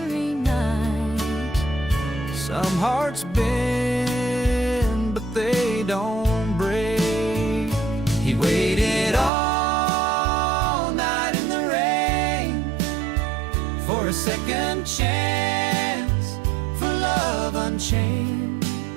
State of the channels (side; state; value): left; drops out; at 9.3 s